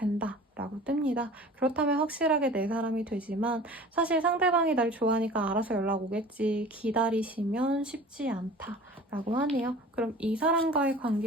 라고 뜹니다. 그렇다면 확실하게 내 사람이 되지만 사실 상대방이 날 좋아하니까 알아서 연락 오겠지 기다리시면 쉽지 않다 라고 하네요. 그럼 이 사람과의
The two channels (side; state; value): both; normal; correlation 0.42